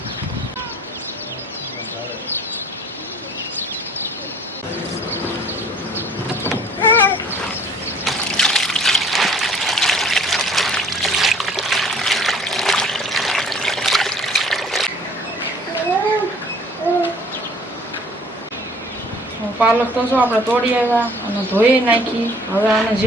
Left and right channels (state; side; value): normal; both; correlation 0.54